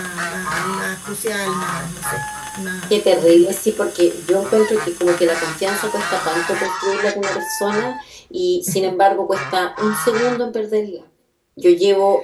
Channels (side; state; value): both; identical; correlation 1.00